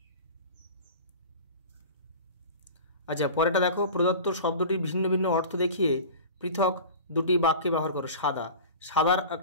আচ্ছা পরেরটা দেখো, প্রদত্ত শব্দটির ভিন্ন ভিন্ন অর্থ দেখিয়ে পৃথক দুটি বাক্যে ব্যবহার করো। সাদা, সাদার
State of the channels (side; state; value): both; inverted; correlation -0.36